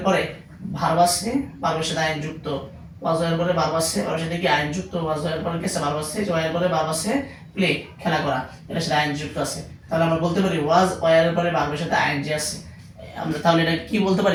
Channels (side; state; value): both; identical; correlation 1.00